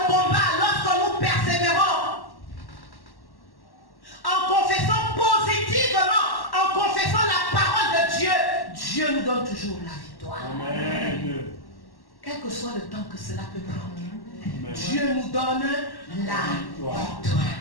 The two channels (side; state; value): right; late; 1.1 ms